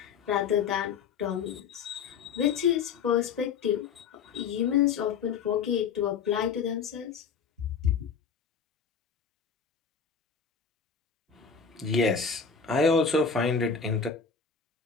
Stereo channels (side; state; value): right; quieter; 6.1 dB